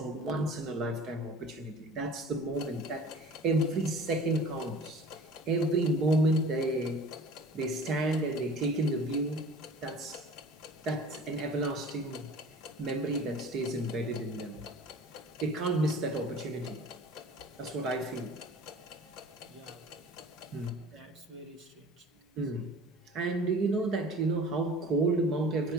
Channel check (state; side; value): normal; both; correlation 0.44